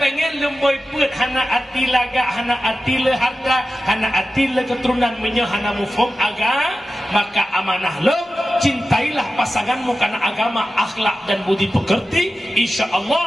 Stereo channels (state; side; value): normal; both; correlation 0.93